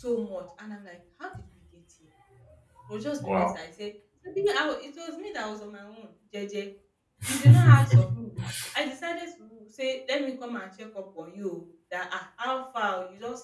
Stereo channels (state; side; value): identical; both; correlation 1.00